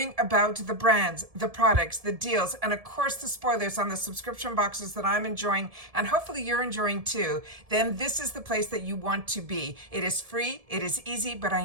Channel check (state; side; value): late; left; 1.7 ms